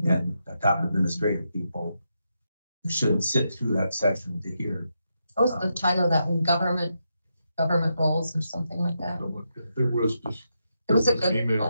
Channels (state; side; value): inverted; both; correlation -0.84